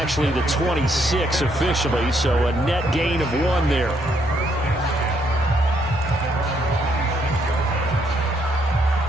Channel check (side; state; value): both; normal; correlation 0.72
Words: the 26 officially, so a net gain of 1 there.